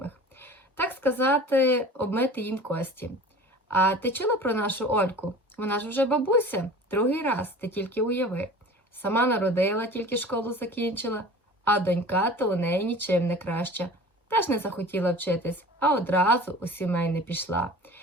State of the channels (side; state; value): both; normal; correlation 0.41